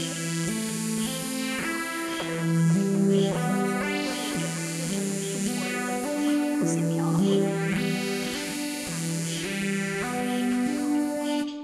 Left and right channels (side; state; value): both; identical; correlation 1.00